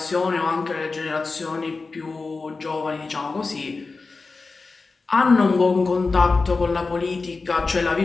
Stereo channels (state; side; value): quieter; right; 4.0 dB